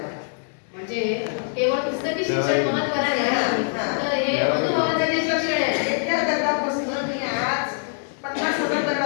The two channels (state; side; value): silent; right; 61 dB below the other